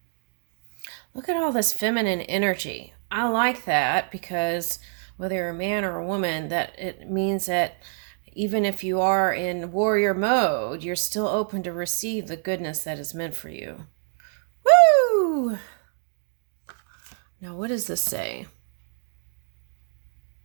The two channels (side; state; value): left; silent; digital silence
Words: Look at all this feminine energy. I like that because whether you're a man or a woman, that it means that even if you are in warrior mode, you're still open to receive the goodness that is meant for you. Woo! Now, what does this say?